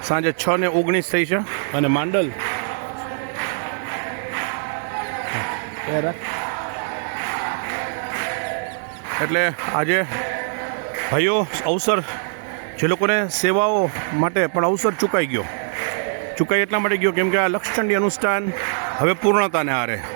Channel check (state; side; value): silent; left; 64 dB below the other